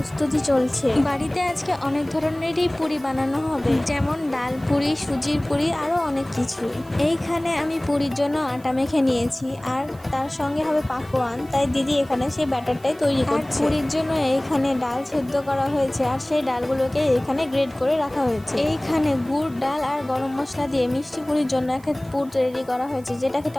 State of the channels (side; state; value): right; noise; hiss, 26 dB below the sound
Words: চলছে। বাড়িতে আজকে অনেক ধরনেরই পুরি বানানো হবে, যেমন ডাল পুরি, সুজির পুরি, আরো অনেক কিছুই। এইখানে আমি পুরির জন্য আটা মেখে নিয়েছি, আর তার সঙ্গে হবে পাকোয়ান, তাই দিদি এখানে সেই ব্যাটারটাই তৈরি করছে। আর পুরির জন্য এইখানে ডাল সেদ্ধ করা হয়েছে, আর সেই ডালগুলোকে এখানে গ্রেড করে রাখা হয়েছে। এইখানে গুড়, ডাল আর গরম মশলা দিয়ে মিষ্টি পুরির জন্য একটা পুর তৈরি করা হয়েছে, যেটা খেতে